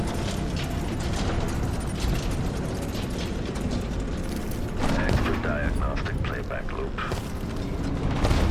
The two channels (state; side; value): identical; both; correlation 1.00